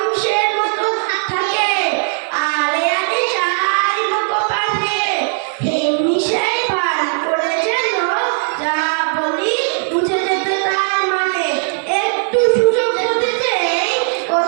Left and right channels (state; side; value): silent; left; digital silence